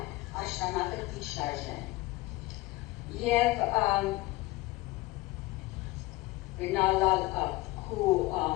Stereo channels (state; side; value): quieter; right; 19.8 dB